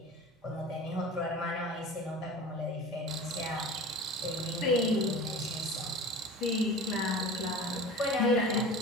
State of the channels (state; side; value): normal; both; correlation 0.36